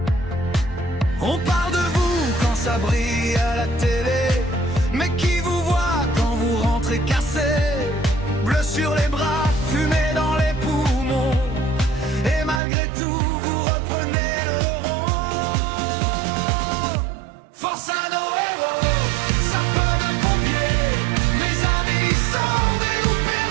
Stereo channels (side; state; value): left; drops out; at 12.6 s